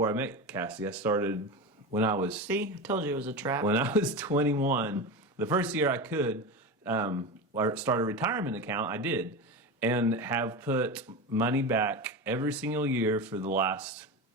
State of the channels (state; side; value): normal; both; correlation 0.23